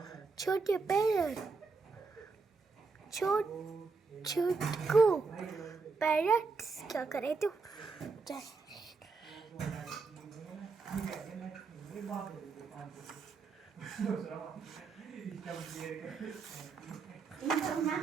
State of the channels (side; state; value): left; quieter; 4.5 dB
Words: छोटे पैरट छोटकू पैरट्स क्या करे तू